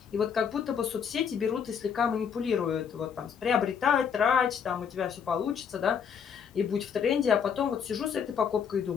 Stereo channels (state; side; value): quieter; right; 7.1 dB